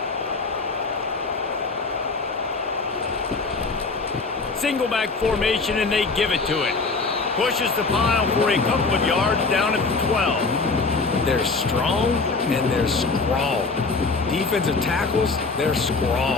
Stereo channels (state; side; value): quieter; right; 4.0 dB